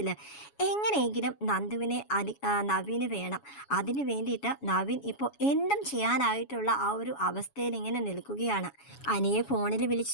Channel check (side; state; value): right; late; 7.2 ms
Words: എങ്ങനെയെങ്കിലും നവീന് വേണം. അതിന് വേണ്ടിയിട്ട് നവീൻ ഇപ്പോൾ എന്തും ചെയ്യാനായിട്ടുള്ള ആ ഒരു അവസ്ഥയിൽ ഇങ്ങനെ നിൽക്കുകയാണ്. അനിയെ ഫോണിൽ